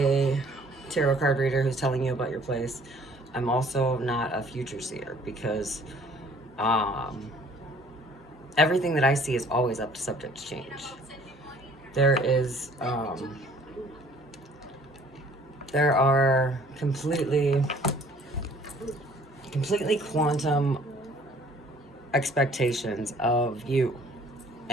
tarot card reader who's telling you about your place. I'm also not a future seer because everything that I see is always up to subject to change. There are completely quantum expectations of you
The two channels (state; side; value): normal; both; correlation 0.55